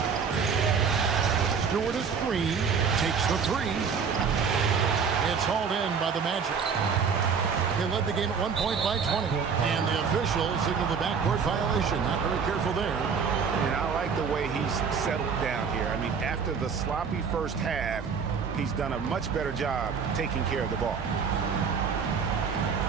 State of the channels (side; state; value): left; quieter; 6.1 dB